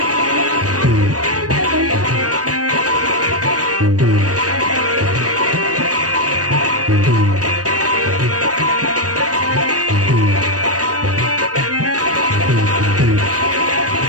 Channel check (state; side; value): late; left; 0.67 ms